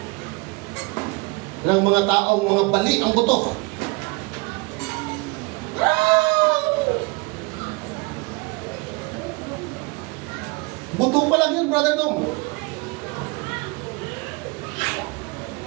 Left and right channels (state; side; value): quieter; left; 27.2 dB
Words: ng mga taong mga bali ang buto. Buto pa lang yun, Brother Dom.